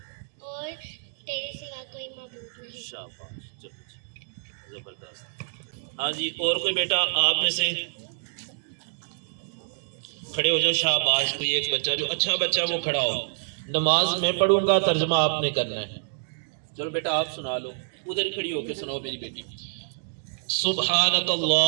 تیرے سوا کوئی معبود نہیں۔ شاباش، چلو جی، زبردست۔ ہاں جی، اور کوئی بیٹا آپ میں سے کھڑے ہو جاؤ؟ شاباش، کوئی ایک بچہ جو اچھا بچہ وہ کھڑا ہو۔ نماز میں پڑھوں گا، ترجمہ آپ نے کرنا ہے۔ چلو بیٹا آپ سنا لو، ادھر ہی کھڑی ہو کے سناؤ میری بیٹی۔ سبحانک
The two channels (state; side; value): silent; left; digital silence